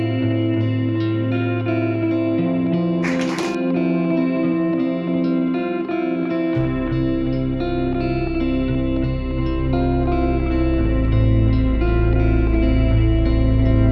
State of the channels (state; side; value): identical; both; correlation 1.00